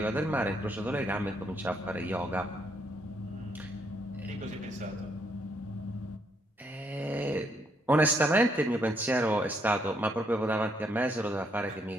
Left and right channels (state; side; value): normal; both; correlation 0.73